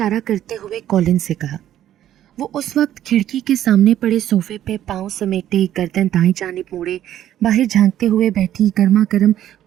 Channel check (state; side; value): quieter; left; 11.8 dB